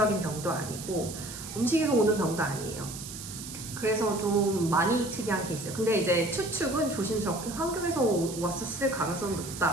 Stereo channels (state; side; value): noise; right; hiss, 11 dB below the sound